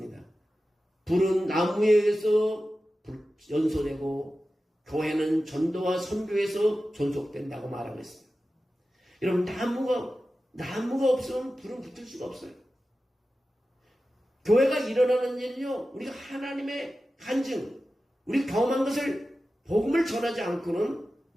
불은 나무에 의해서 연소되고 교회는 전도와 선교에서 존속된다고 말하고 있습니다. 여러분, 나무가 없으면 불은 붙을 수가 없어요. 교회가 일어나는 일은요, 우리가 하나님의 간증, 우리 경험한 것을 복음을 전하지 않고는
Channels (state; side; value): normal; both; correlation 0.94